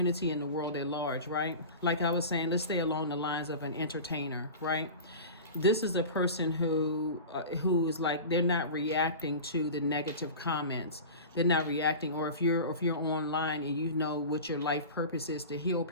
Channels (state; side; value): inverted; both; correlation -0.32